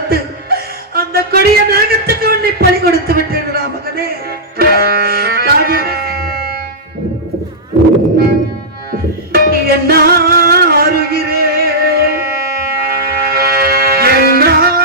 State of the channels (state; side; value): normal; both; correlation -0.10